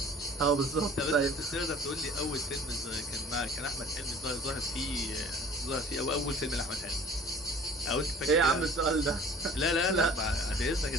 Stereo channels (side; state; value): both; normal; correlation 0.47